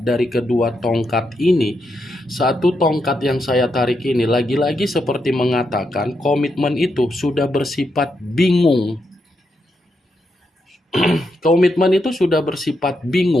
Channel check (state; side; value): normal; both; correlation 0.82